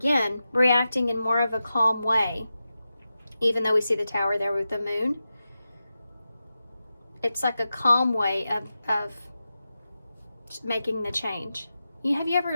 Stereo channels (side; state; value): both; inverted; correlation -0.92